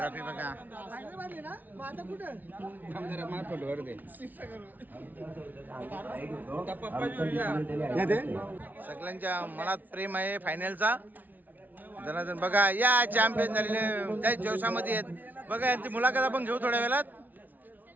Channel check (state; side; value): late; left; 0.082 ms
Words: बघा. सगळ्यांच्या मनात प्रेम आहे फायनलचा. जनार्दन बघा या चॅम्पियन झालेले त्या जोशामध्ये आहेत. बघा यांची मुलाखत आपण घेऊ थोड्या वेळात.